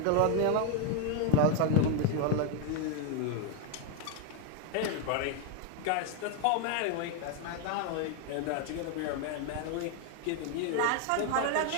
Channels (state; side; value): different; both; correlation 0.01